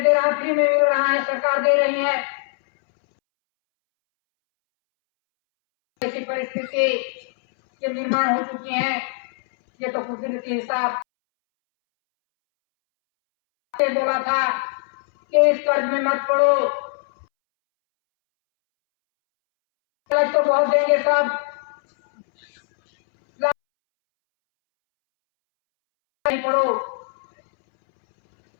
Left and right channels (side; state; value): right; silent; 65 dB below the other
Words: दे रहा है, फ्री में मिल रहा है, सरकार दे रही है। ऐसी परिस्थिति के निर्माण हो चुकी है। ये तो कुदरती हिसाब से बोला था कि इस कर्ज में मत पड़ो, कर्ज तो बहुत देंगे सब, नहीं पड़ो।